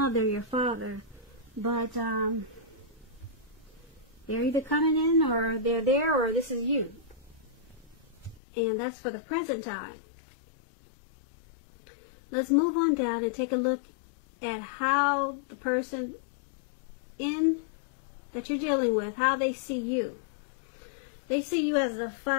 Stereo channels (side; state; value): right; drops out; at 8.4 s